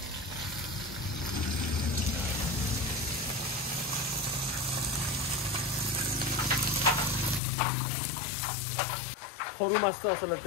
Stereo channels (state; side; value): drops out; right; at 7.4 s